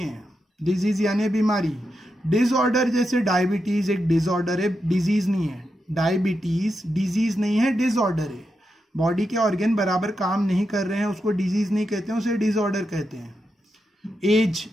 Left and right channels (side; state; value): both; normal; correlation 0.86